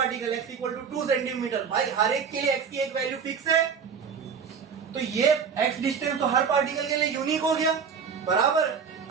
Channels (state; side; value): quieter; left; 6.5 dB